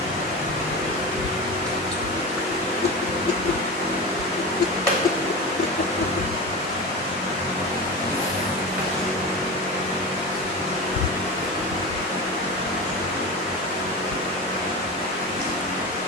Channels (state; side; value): normal; both; correlation 0.26